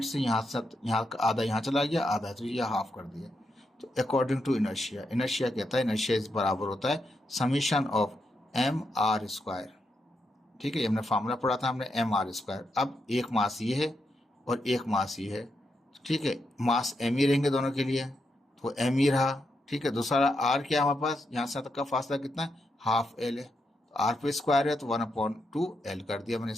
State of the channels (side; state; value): both; normal; correlation 0.83